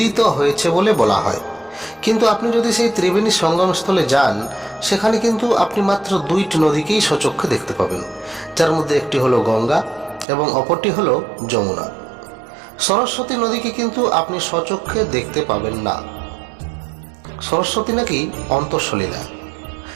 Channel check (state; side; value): drops out; left; at 10.2 s